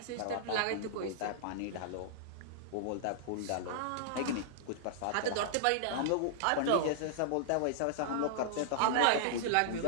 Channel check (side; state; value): both; different; correlation -0.01